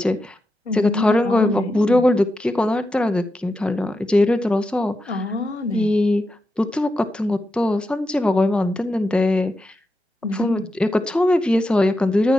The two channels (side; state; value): both; normal; correlation 0.88